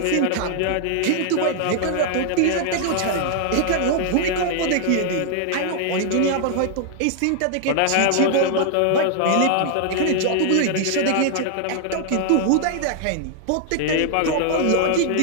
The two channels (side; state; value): both; different; correlation 0.00